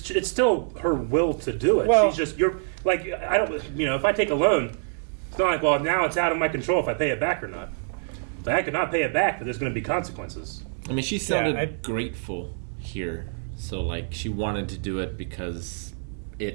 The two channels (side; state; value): left; silent; 61 dB below the other